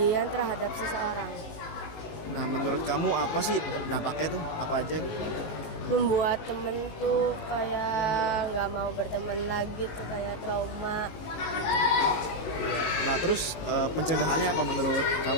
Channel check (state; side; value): late; right; 19 ms